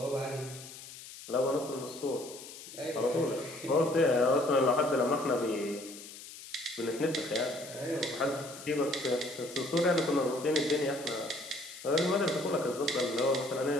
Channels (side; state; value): left; noise; hiss, 14 dB below the sound